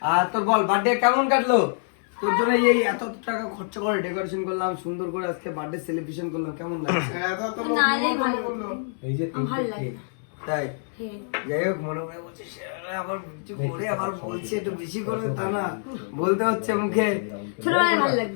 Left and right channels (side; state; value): right; silent; 61 dB below the other